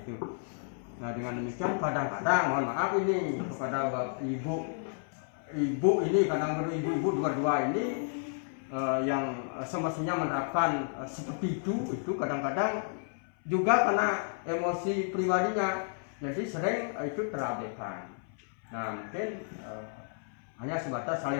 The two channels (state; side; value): silent; right; 57 dB below the other